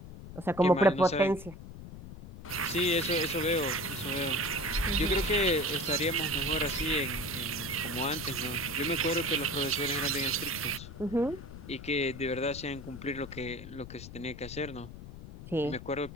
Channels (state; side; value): noise; left; rumble, 13 dB below the sound